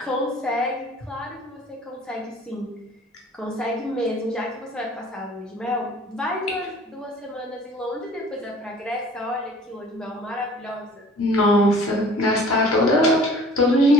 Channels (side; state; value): both; normal; correlation 0.49